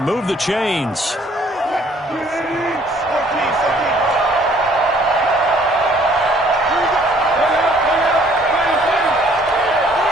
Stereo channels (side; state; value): both; normal; correlation 0.60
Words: Move the chains.